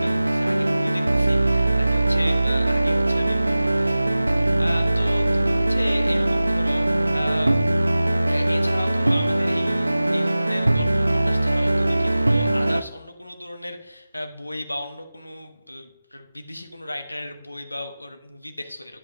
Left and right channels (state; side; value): inverted; both; correlation -0.97